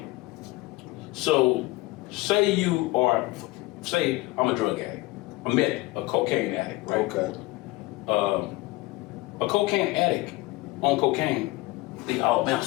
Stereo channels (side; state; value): right; quieter; 20.4 dB